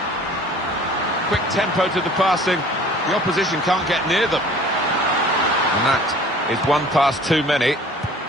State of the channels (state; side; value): normal; both; correlation 0.49